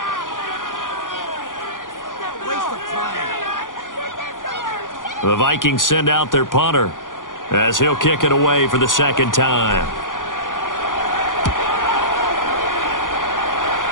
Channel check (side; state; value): right; late; 0.89 ms